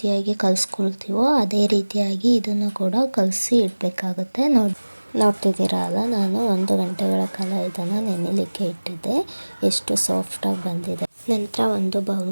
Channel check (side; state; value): both; inverted; correlation -1.00